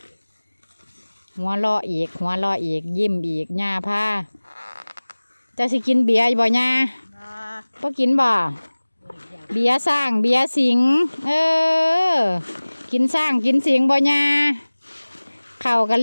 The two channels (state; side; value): inverted; both; correlation -1.00